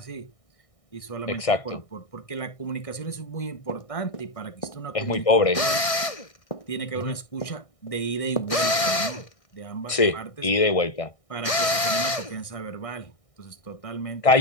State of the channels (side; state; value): right; late; 1.6 ms